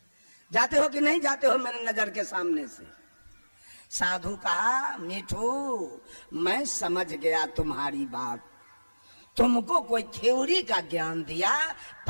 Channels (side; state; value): both; inverted; correlation -1.00